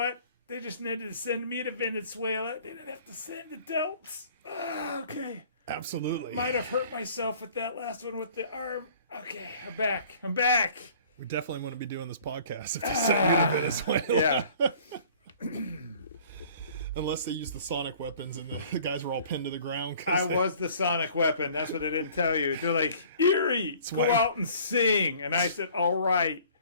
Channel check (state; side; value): inverted; both; correlation -0.52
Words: They just needed to send me to Venezuela. They didn't have to send adults. Okay. Absolutely. Might have hurt myself with that last one with the arm. Okay, I'm back. We definitely want to be doing this podcast if they send me to Venezuela. Unless they use the sonic weapons and the guys were all pinned to the ground. I was the sonic weapon. That's what they didn't tell you. They're like, Erie, go out and sing. And I said, all right.